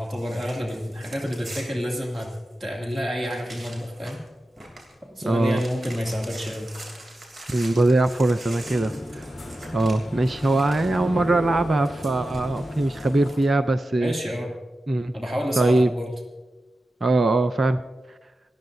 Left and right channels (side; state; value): both; normal; correlation 0.92